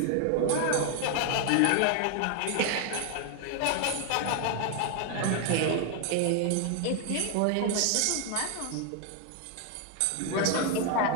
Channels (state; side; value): different; both; correlation 0.00